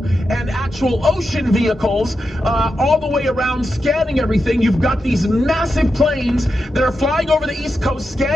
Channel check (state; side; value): normal; both; correlation 0.88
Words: and actual ocean vehicles all the way around scanning everything. You've got these massive planes that are flying over the East Coast